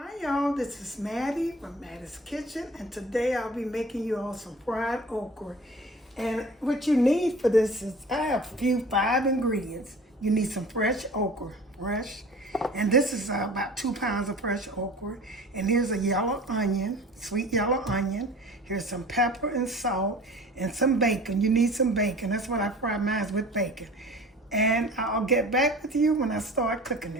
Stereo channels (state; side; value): normal; both; correlation 0.42